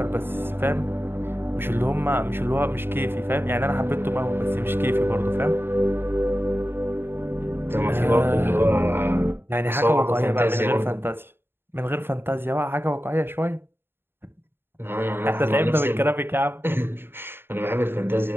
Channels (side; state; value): left; late; 0.11 ms